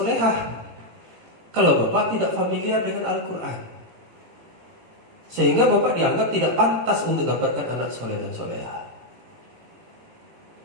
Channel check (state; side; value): late; left; 17 ms